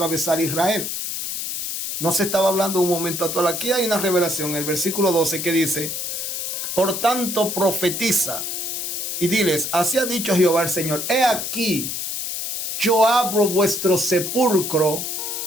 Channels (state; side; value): noise; left; hiss, 4 dB below the sound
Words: Israel. No se estaba hablando un momento actual. Aquí hay una revelación, el versículo 12, que dice: por tanto profetiza y diles, así ha dicho Jehová el Señor, he aquí, yo abro vuestro sepulcro